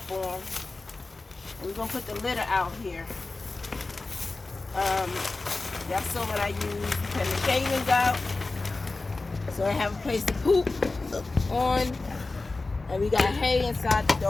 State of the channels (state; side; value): quieter; right; 3.4 dB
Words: We're gonna put the litter out here. That's what I use. Put the shavings out, so I have a place to poop on, and we got hay inside the